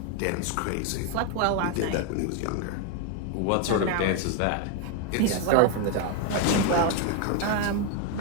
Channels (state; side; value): different; both; correlation 0.01